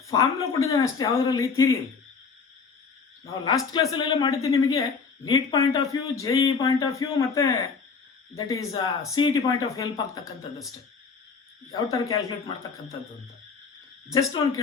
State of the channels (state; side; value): quieter; right; 5.3 dB